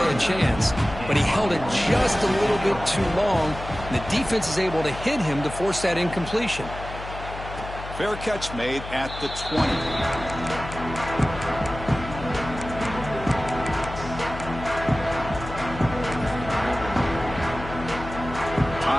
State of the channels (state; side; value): noise; left; hum, 11 dB below the sound